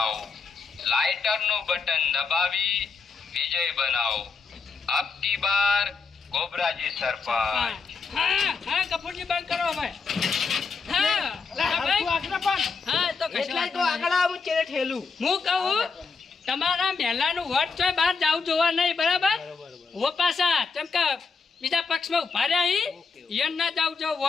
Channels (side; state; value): right; quieter; 5.0 dB